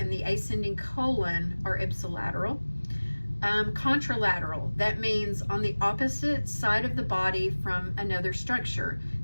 the ascending colon are ipsilateral. Contralateral, that means on the opposite side of the body from another structure.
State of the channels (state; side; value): inverted; both; correlation -1.00